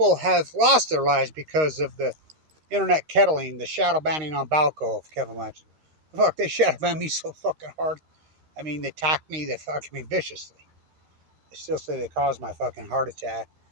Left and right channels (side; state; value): left; late; 13 ms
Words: have lost their lives because of the internet kettling, the shadow banning on Balco of Kevin Blanche? Fuck, they shadow banned me so fucking hard. I mean, they attacked me, they fucking me viciously. They still say they caused my fucking heart attack.